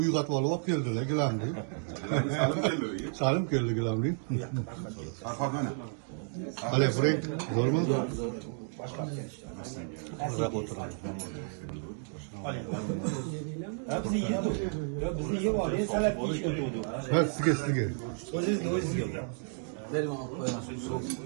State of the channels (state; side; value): silent; left; 56 dB below the other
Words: uyg'otib olib keldilar gilamni. Salim keldi gilamni. Farqat mana. Hali Frank bormi? Maza o'tiramiz. Bizni yeydi. Bizni yeb olib, salat yeyish o'tdi. Ha, sizga. O'zingizga.